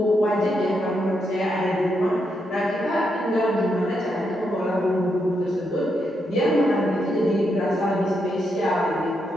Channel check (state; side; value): normal; both; correlation 0.81